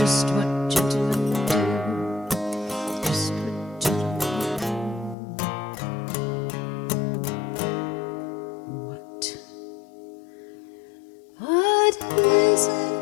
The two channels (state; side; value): drops out; right; at 5.2 s